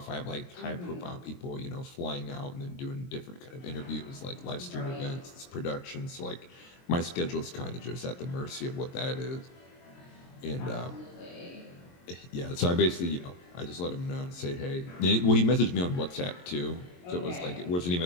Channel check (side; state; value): right; late; 23 ms